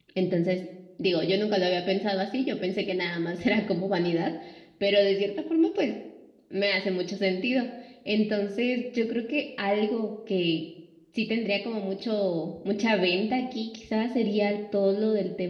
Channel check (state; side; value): identical; both; correlation 1.00